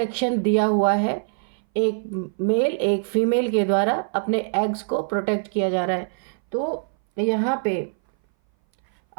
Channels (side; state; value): left; silent; 59 dB below the other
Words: दिया हुआ है। एक मेल एक फीमेल के द्वारा अपने एग्स को प्रोटेक्ट किया जा रहा है। तो यहाँ पे